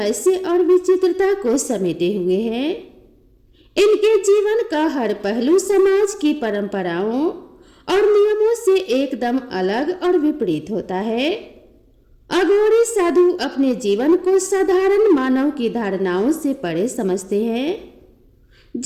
और विचित्रता को समेटे हुए है। इनके जीवन का हर पहलू समाज की परंपराओं और नियमों से एकदम अलग और विपरीत होता है। अघोरी साधु अपने जीवन को साधारण मानव की धारणाओं से परे समझते हैं।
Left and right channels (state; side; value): identical; both; correlation 1.00